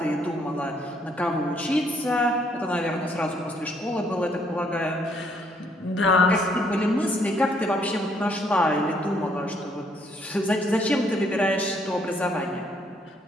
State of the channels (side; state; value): both; normal; correlation 0.68